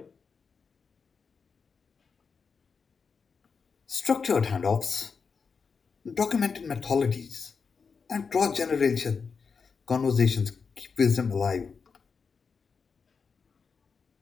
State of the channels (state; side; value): quieter; right; 5.4 dB